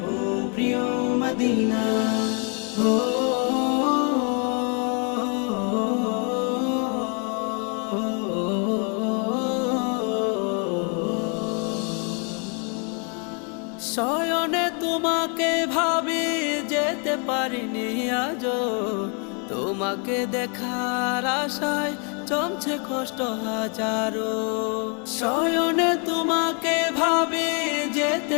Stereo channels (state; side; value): quieter; right; 37.4 dB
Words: ও প্রিয় মদিনা। ও শয়নে তোমাকে ভাবি যেতে পারিনি আজো, তোমাকে দেখার আশায় জমছে কষ্ট হাজারো। শয়নে তোমাকে ভাবি